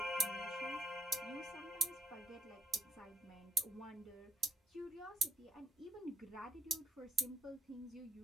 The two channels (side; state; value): both; normal; correlation 0.71